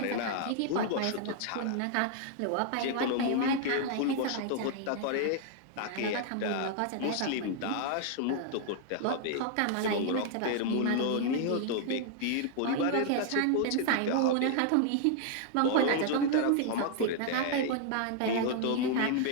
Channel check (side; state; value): both; different; correlation 0.00